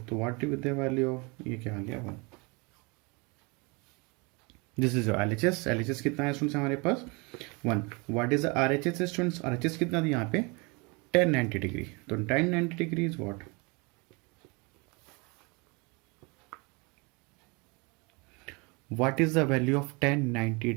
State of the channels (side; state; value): left; quieter; 28.8 dB